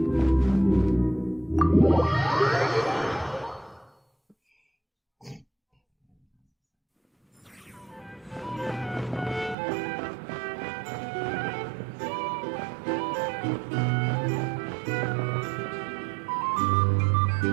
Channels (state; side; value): drops out; left; at 9.6 s